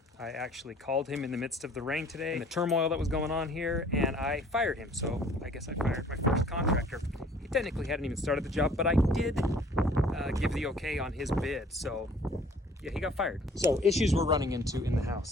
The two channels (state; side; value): normal; both; correlation 0.54